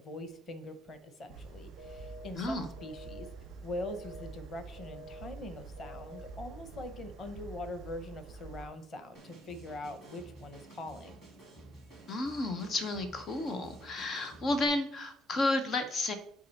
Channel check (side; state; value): both; normal; correlation 0.72